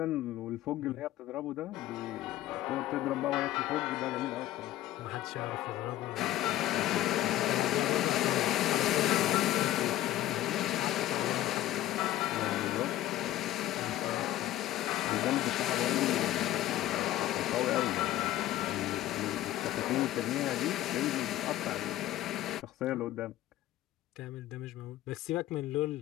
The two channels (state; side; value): quieter; right; 14.3 dB